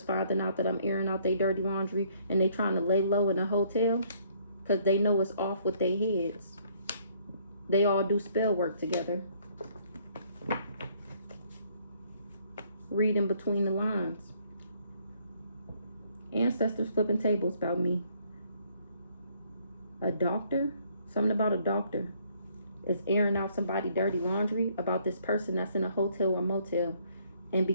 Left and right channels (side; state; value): both; inverted; correlation -0.65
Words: finding out that I'm airing out their dirty laundry and they trying to lay low in a hotel because they know it's off with their heads. They all do spell work together. Reading between the lines. Ancestors flipping tables about me. A doctor? Something about a doctor. Is airing out somebody dirty laundry about this person that's in a hotel or motel. And